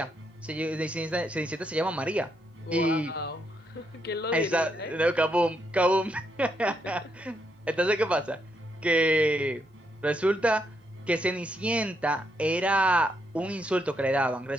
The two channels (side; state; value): both; normal; correlation 0.78